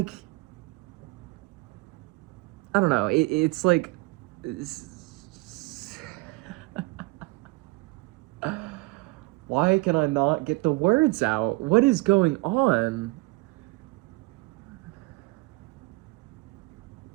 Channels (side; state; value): left; quieter; 23.8 dB